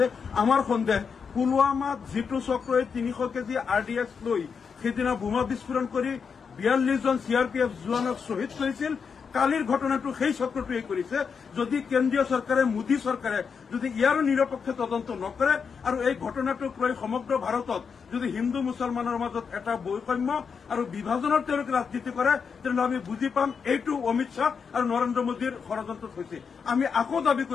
আমাৰ সন্দেহ পুলৱামাত যেটো চক্ৰই 300 কেজি RDX লৈ সেইদিনা বোমা বিস্ফোৰণ কৰি 42 জন CRPF জোৱানক শ্বহীদ কৰিছিল, কালিৰ ঘটনাটো সেই চক্ৰটোৱে কৰিছে। যদি কেন্দ্ৰীয় চৰকাৰে মোদী চৰকাৰে যদি ইয়াৰো নিৰপেক্ষ তদন্ত নকৰে আৰু এই ঘটনাটোক লৈ সমগ্ৰ ভাৰতত যদি হিন্দু মুছলমানৰ মাজত এটা বৈষম্য আৰু বিভাজনৰ তেওঁলোকে ৰাজনীতি কৰে তেনেহ'লে আমি বুজি পাম এইটো অমিত শ্বাহ আৰু নৰেন্দ্ৰ মোদীৰ ষড়যন্ত্ৰত হৈছে। আমি আকৌ দাবী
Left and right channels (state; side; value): quieter; right; 6.0 dB